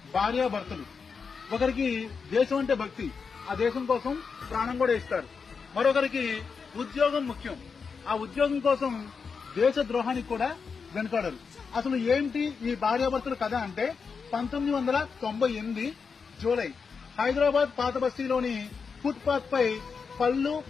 భార్యాభర్తలు. ఒకరికి దేశం అంటే భక్తి, ఆ దేశం కోసం ప్రాణం కూడా ఇస్తారు. మరొకరికి ఉద్యోగం ముఖ్యం, ఆ ఉద్యోగం కోసం దేశ ద్రోహానికి కూడా వెనుకాడరు. అసలు ఏంటి ఈ భార్యాభర్తల కథ అంటే 1998 జూలై హైదరాబాద్ పాత బస్తీలోని ఫుట్ పాత్ పై పళ్ళు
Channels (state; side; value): quieter; right; 5.5 dB